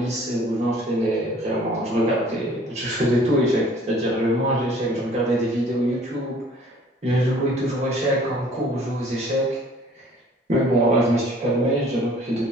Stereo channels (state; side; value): normal; both; correlation 0.53